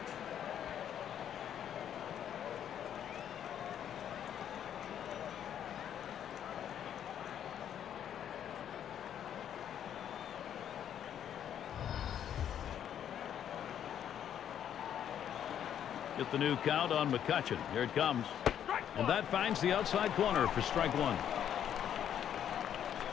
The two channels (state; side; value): quieter; right; 9.7 dB